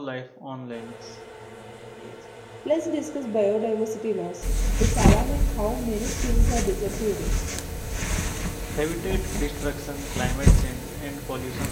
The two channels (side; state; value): both; identical; correlation 1.00